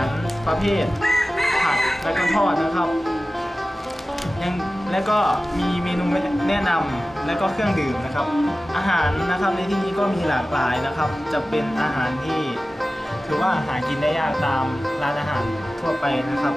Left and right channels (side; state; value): both; normal; correlation 0.96